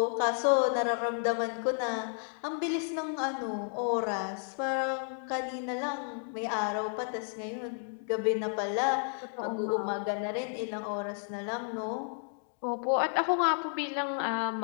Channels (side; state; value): right; silent; 56 dB below the other